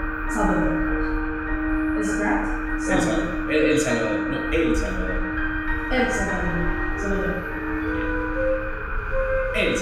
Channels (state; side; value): identical; both; correlation 1.00